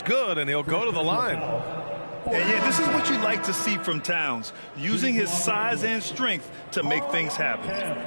good, and he'll go to the line. And yeah, this is what you like to see from Towns, using his size and strength to make things happen.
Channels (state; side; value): inverted; both; correlation -1.00